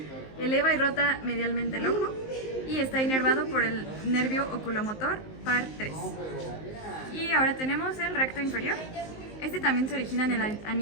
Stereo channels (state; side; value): late; right; 19 ms